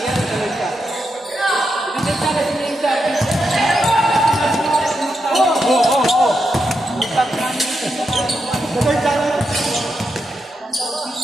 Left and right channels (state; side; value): normal; both; correlation 0.85